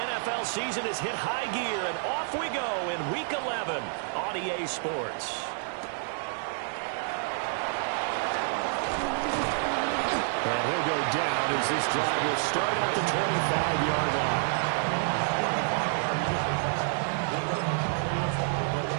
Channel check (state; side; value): silent; left; digital silence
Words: season has hit high gear, and off we go in Week 11 on EA Sports. And he'll go down as this drive will start at the 25-yard line.